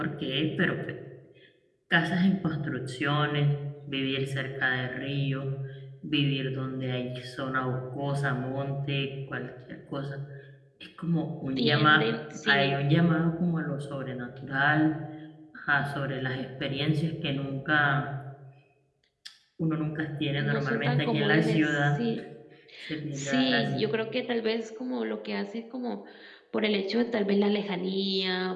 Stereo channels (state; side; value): identical; both; correlation 1.00